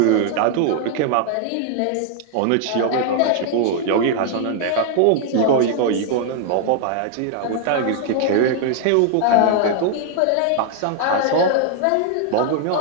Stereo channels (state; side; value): different; both; correlation 0.00